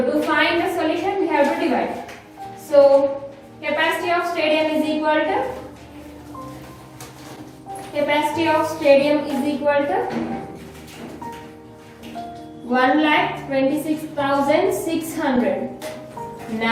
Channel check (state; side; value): identical; both; correlation 1.00